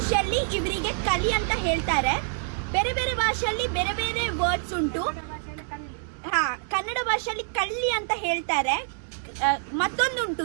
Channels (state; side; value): silent; left; 61 dB below the other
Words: ಇವರಿಗೆ ಕಲಿ ಅಂತ ಹೇಳ್ತಾರೆ, ಬೇರೆ ಬೇರೆ ಭಾಷೆಯಲ್ಲಿ ಬೇರೆ ಬೇರೆ ವರ್ಡ್ಸ್ ಉಂಟು. ಹಾ, ಕನ್ನಡ ಭಾಷೆಯಲ್ಲಿ ಕಳ್ಳಿ ಅಂತ ಹೇಳ್ತಾರೆ. ಮತ್ತೊಂದುಂಟು